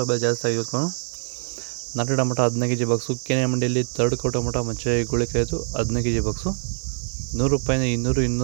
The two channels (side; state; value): left; silent; digital silence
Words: ಬೆಲೆ ಜಾಸ್ತಿ ಆಗಿತ್ತು. ನಾಟಿ ಟೊಮೊಟೊ 15 kg ಬಾಕ್ಸು. KNN ಮಂಡಿಯಲ್ಲಿ ತರ್ಡ್ ಕೋ ಟೊಮೊಟೊ ಮಚ್ಚೆ ಗುಳಿಕಾಯಿತು 15 kg ಬಾಕ್ಸು. 100 ರೂಪಾಯಿಂದ